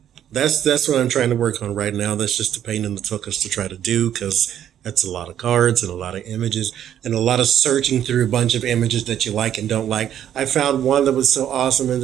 that's what I'm trying to work on right now. That's just a pain in the tuchus to try to do, because that's a lot of cards and a lot of images and a lot of searching through a bunch of images that you like and don't like. I found one that was so awesome, and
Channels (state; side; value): quieter; left; 10.4 dB